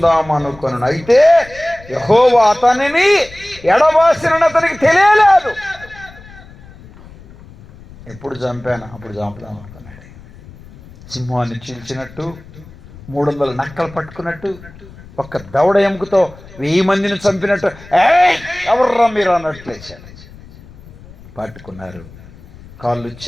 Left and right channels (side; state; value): left; noise; rumble, 20 dB below the sound